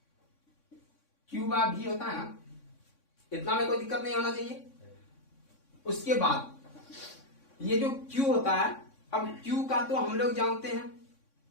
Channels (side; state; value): right; late; 3.6 ms